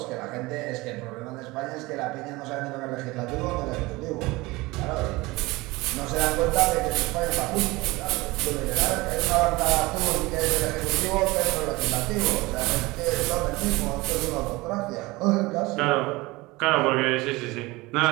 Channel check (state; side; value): quieter; left; 21.8 dB